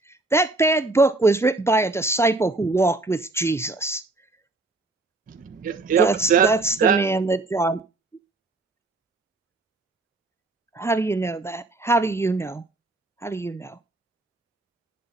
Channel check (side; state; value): left; quieter; 3.1 dB